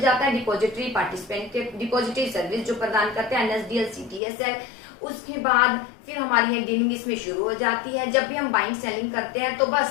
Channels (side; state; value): right; drops out; at 4.2 s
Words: जाता है डिपॉजिटरी पार्टिसिपेंट के, डिपॉजिटरी सर्विस जो प्रदान करते हैं एनएसडीएल सीडीएसएल। उसके बाद फिर हमारी है डीलिंग इसमें शुरू हो जाती है। जब भी हम बाइंग सेलिंग करते हैं तो